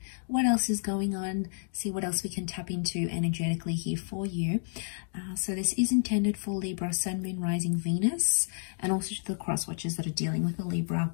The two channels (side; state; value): right; silent; digital silence